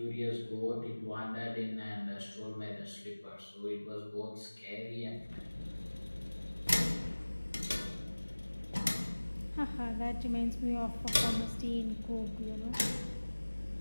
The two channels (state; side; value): inverted; both; correlation -1.00